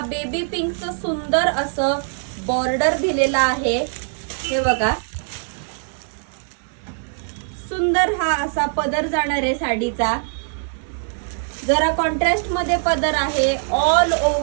बेबी पिंकचं सुंदर असं बॉर्डर दिलेला आहे. हे बघा, सुंदर हा असा पदर जाणार आहे साडीचा. जरा कॉन्ट्रास्ट मध्ये पदर आहे. ऑल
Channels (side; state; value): left; silent; 64 dB below the other